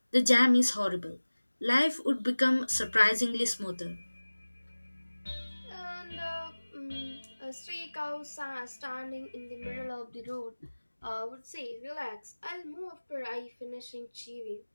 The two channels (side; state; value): both; inverted; correlation -1.00